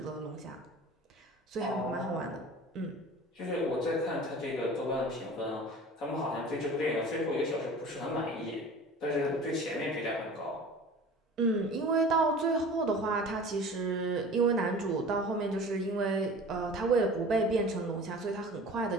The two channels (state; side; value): normal; both; correlation 0.40